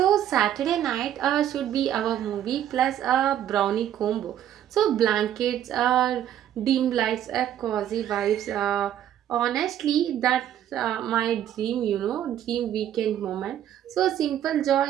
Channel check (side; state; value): left; quieter; 11.0 dB